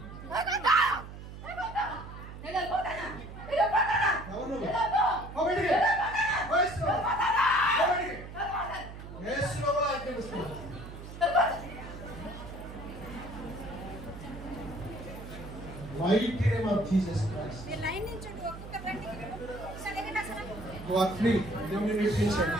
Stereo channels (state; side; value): noise; right; hum, 12 dB below the sound